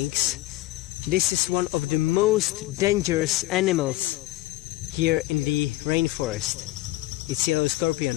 this is one of the most dangerous animals here in the rainforest. It's yellow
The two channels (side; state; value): right; quieter; 17.7 dB